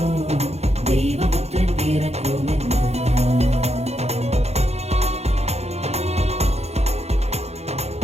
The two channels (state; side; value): late; left; 0.31 ms